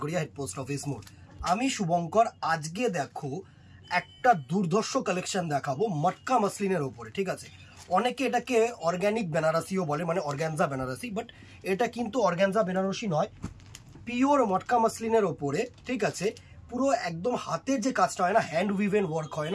head post office মোড়। আমি শুভঙ্কর। আজকে দেখো একটা দুর্ধর্ষ কালেকশন দেখাবো মটকা মসলিনের ওপরে। ঠিক আছে, অনেকে এটাকে অর্গ্যানিক বেনারসিও বলে, মানে অর্গ্যানজা বেনারসি, বাট এটা কিন্তু অর্গ্যানজা বেনারসি নয়, পিওর মটকা মসলিনের ওপরে। ঠিক আছে, পুরো একদম হাতের যে কাজটা হয় না, হ্যান্ড উইভেন ওয়ার্ক হয়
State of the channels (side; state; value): both; identical; correlation 1.00